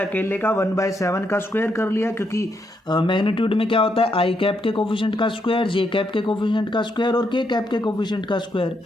का 1/7 का स्क्वायर कर लिया, क्योंकि मैग्नीट्यूड में क्या होता है आई कैप के कोफिशिएंट का स्क्वायर, जे कैप के कोफिशिएंट का स्क्वायर और के कैप के कोफिशिएंट का स्क्वायर,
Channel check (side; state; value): both; normal; correlation 0.78